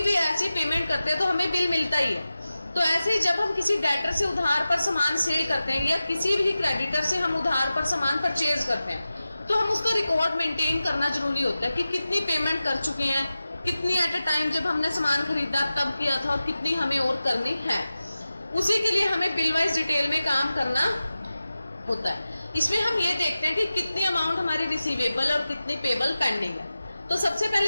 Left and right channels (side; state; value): both; inverted; correlation -0.94